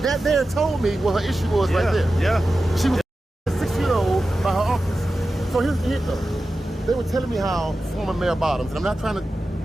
there told me what her issue was right there. Yeah. She was 6-year-old by her uncles. So here's the hit though. They were telling me how former Mayor Bottoms, and I'm not trying to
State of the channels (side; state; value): both; normal; correlation 0.93